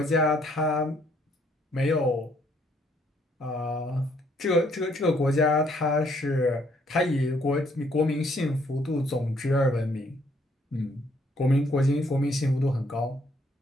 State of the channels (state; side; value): normal; both; correlation 0.67